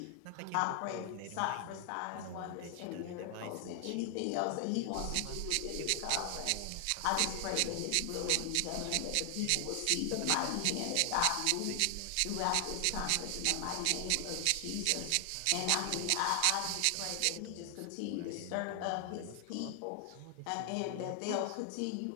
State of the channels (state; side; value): different; both; correlation 0.00